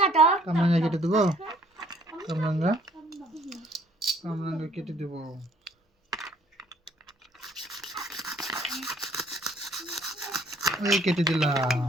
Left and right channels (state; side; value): normal; both; correlation 0.61